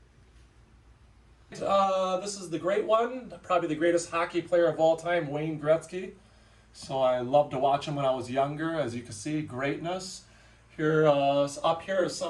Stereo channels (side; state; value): both; identical; correlation 1.00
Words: This is the great one, probably the greatest hockey player of all time, Wayne Gretzky. So I loved to watch him when I was younger. As you can see, greatness. Here, up here are